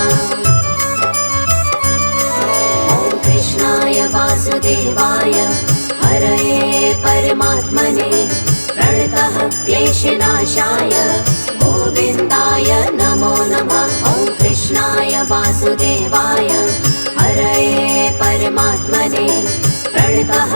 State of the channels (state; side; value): inverted; both; correlation -1.00